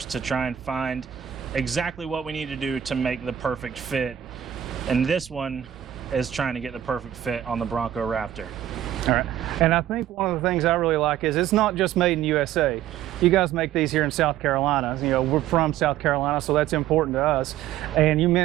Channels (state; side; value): quieter; left; 11.3 dB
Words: to try and find exactly what we need to do to make the perfect fit. And this one is trying to get the perfect fit on the Bronco Raptor. All right, and I think one of the things I really like is it's not just made in USA. You guys make these here in South Carolina. You know, we're from South Carolina, so that's important to us. And you